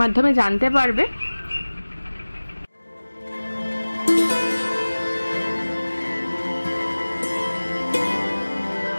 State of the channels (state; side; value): inverted; both; correlation -1.00